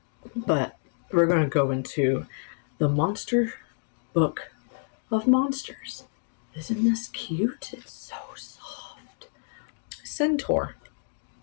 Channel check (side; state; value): right; silent; digital silence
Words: but we're going to go into the Monster Book of Monsters. Isn't this cute? It's so soft. Centaur,